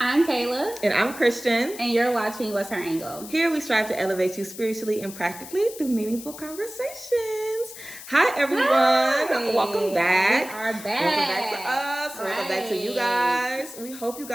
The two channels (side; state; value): left; noise; hiss, 14 dB below the sound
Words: I'm Kayla. And I'm Christian. And you're watching What's Her Angle? Here we strive to elevate you spiritually and practically through meaningful conversations. Hi, everyone. Hi. Welcome back. We are back. Welcome back to us. Right. Welcome back to you guys. We hope you